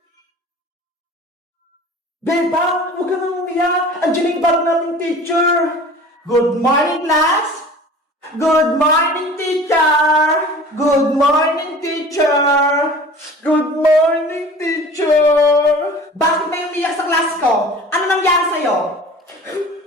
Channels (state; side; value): normal; both; correlation 0.43